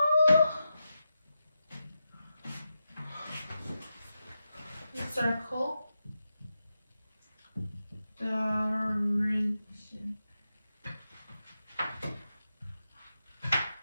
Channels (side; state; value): both; inverted; correlation -0.89